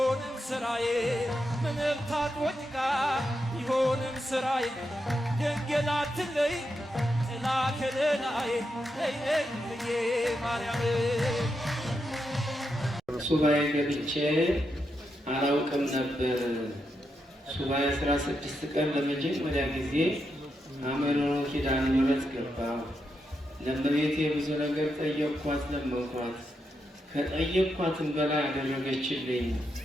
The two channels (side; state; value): both; normal; correlation 0.84